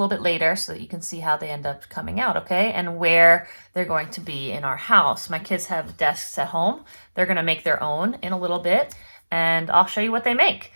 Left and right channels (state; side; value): inverted; both; correlation -1.00